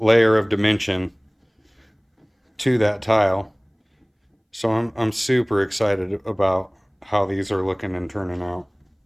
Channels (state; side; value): identical; both; correlation 1.00